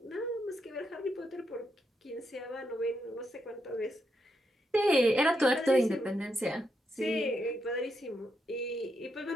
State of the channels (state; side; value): normal; both; correlation 0.82